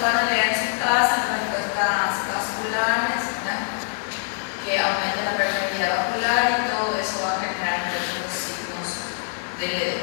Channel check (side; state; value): right; silent; 63 dB below the other